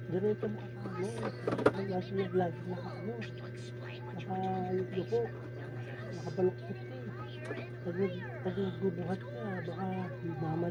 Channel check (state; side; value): identical; both; correlation 1.00